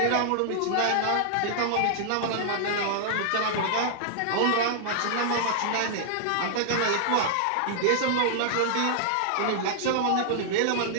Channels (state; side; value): different; both; correlation -0.01